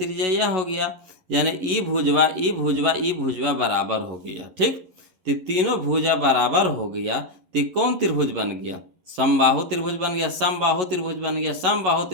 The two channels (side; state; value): left; late; 11 ms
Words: यह हो गया, यानी ई भुजवा बराबर हो गया। ठीक, तो तीनों भुजा बराबर हो गया, तो कौन त्रिभुज बन गया, समबाहु त्रिभुज बन गया, समबाहु त्रिभुज बन गया, समबाहु